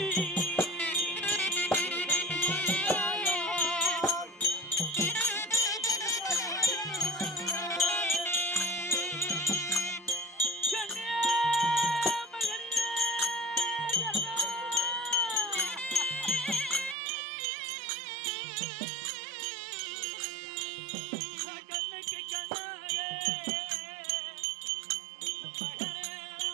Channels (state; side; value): drops out; left; at 16.9 s